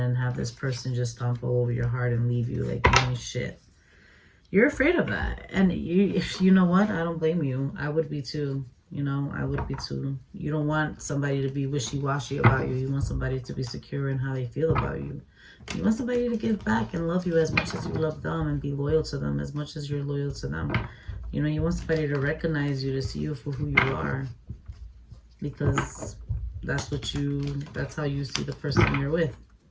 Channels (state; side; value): identical; both; correlation 1.00